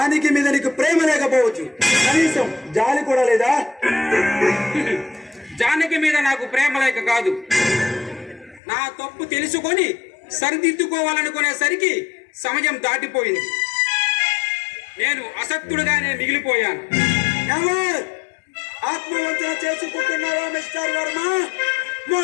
మీద నీకు ప్రేమ లేకపోవచ్చు, కనీసం జాలి కూడా లేదా? జానకి మీద నాకు ప్రేమ లేక కాదు, నా తప్పు తెలుసుకొని సరిదిద్దుకోవాలనుకునేసరికి సమయం దాటిపోయింది. నేను అసక్తుడుగానే మిగిలిపోయాను. ఎవరు ఆత్మవంచన చేసుకుంటున్నావా మిస్టర్ వర్మ?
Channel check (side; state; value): right; drops out; at 8.6 s